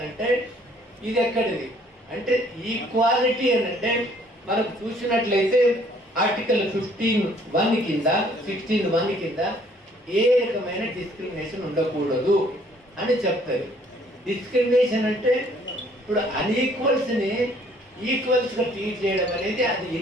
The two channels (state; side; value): normal; both; correlation 0.61